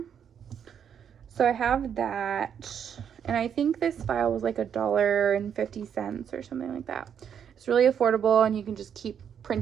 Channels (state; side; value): quieter; left; 8.2 dB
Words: So I have that, and I think this file was like $1.50 or something like that. It's really affordable, and you can just keep